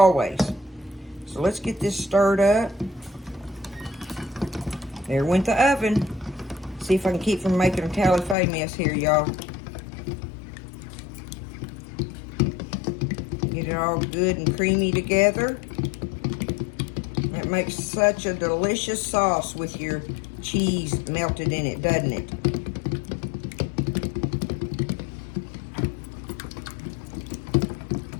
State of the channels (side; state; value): right; drops out; at 8.3 s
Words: So let's get this stirred up. There went the oven. See if I can keep from making a tally-fay mess here, y'all. Get it all good and creamy together. That makes such a delicious sauce with your cheese melted in it, doesn't it?